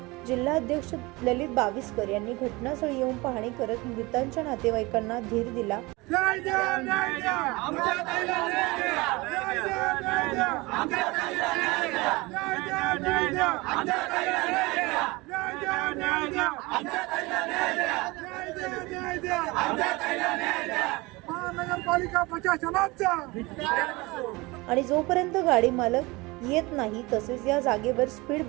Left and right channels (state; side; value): quieter; left; 23.4 dB